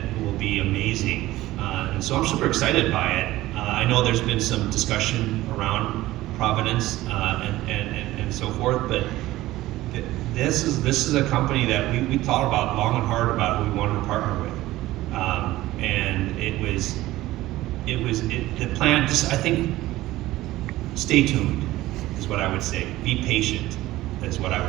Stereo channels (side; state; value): left; quieter; 16.7 dB